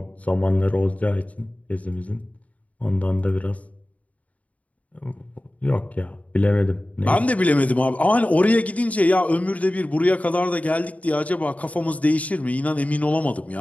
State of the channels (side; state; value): right; late; 0.069 ms